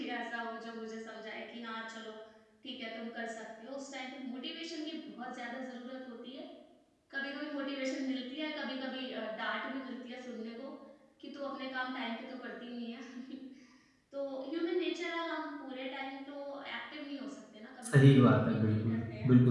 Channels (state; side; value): identical; both; correlation 1.00